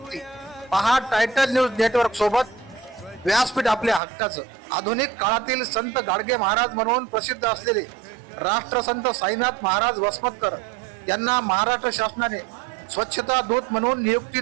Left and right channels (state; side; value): drops out; left; at 4.0 s